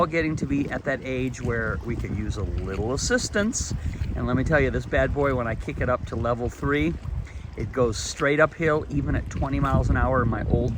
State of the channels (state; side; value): identical; both; correlation 1.00